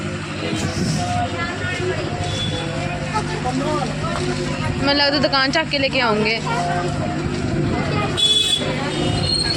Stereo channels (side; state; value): both; identical; correlation 1.00